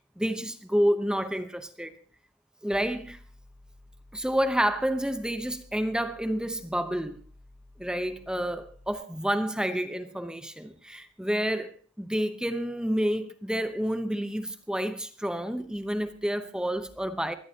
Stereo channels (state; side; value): normal; both; correlation 0.92